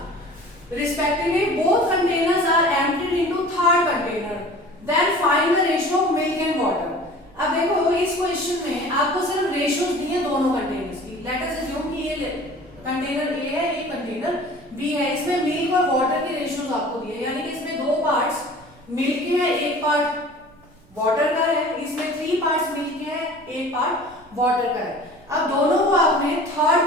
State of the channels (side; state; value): right; noise; rumble, 27 dB below the sound